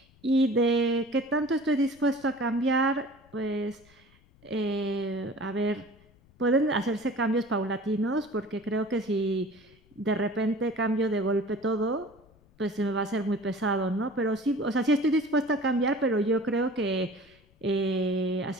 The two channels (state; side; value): noise; left; rumble, 29 dB below the sound